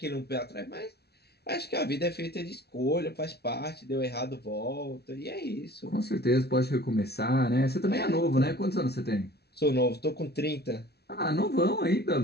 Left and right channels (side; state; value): right; late; 0.47 ms